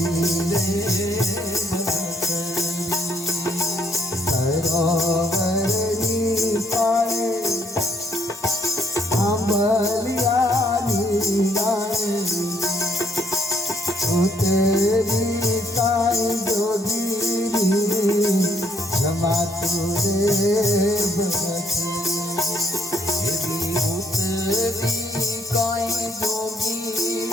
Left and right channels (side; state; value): both; normal; correlation 0.70